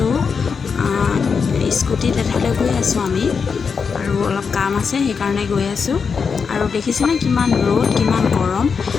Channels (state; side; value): quieter; right; 5.7 dB